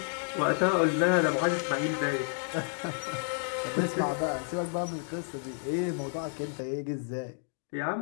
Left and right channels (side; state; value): right; silent; 57 dB below the other